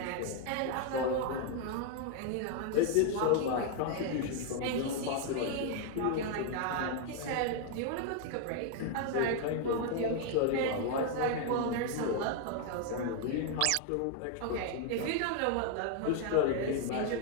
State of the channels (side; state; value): both; different; correlation 0.00